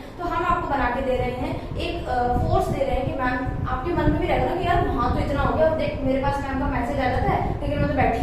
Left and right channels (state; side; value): identical; both; correlation 1.00